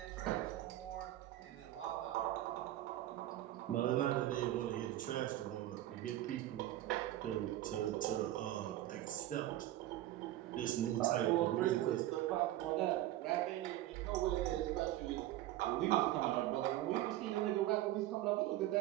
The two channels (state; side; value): quieter; left; 14.4 dB